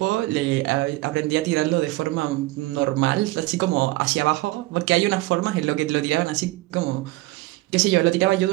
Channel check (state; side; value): quieter; left; 19.5 dB